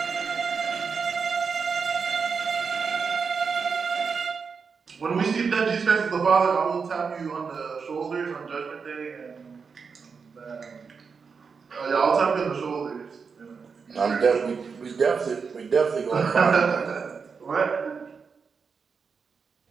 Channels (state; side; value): quieter; left; 5.5 dB